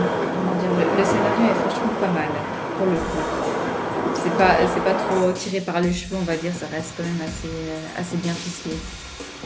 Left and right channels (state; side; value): identical; both; correlation 1.00